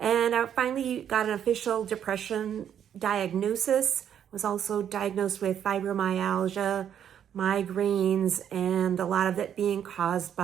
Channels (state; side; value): quieter; left; 9.3 dB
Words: I finally got an official depression diagnosis. Was also diagnosed with fibromyalgia, migraines, and a lot of it being caused